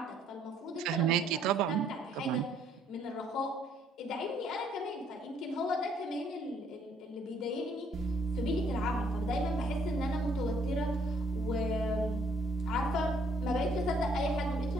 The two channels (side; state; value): both; normal; correlation 0.65